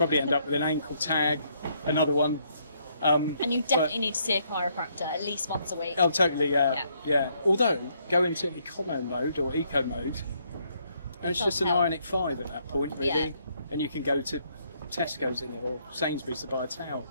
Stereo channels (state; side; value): inverted; both; correlation -0.71